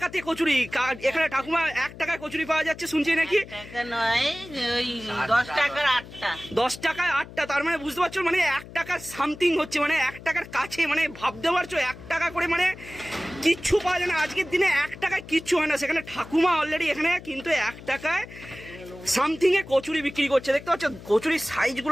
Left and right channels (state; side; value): noise; left; hum, 16 dB below the sound